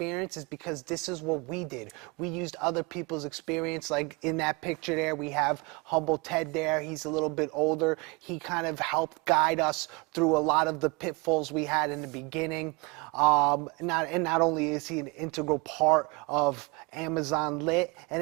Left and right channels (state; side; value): quieter; left; 27.4 dB